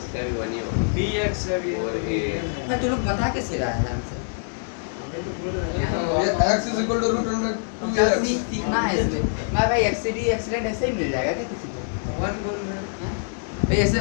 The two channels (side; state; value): right; silent; digital silence